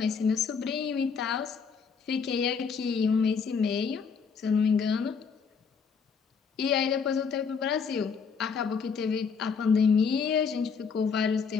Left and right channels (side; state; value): right; quieter; 5.8 dB